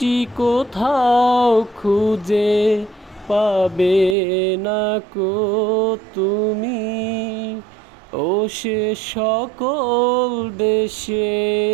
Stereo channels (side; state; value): left; drops out; at 4.2 s